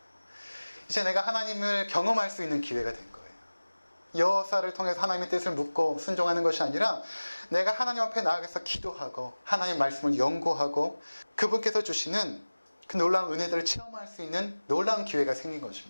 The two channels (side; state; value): both; inverted; correlation -1.00